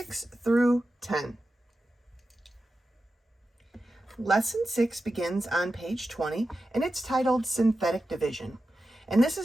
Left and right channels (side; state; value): both; normal; correlation 0.92